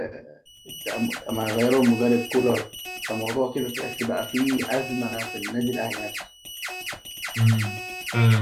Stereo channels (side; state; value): both; identical; correlation 1.00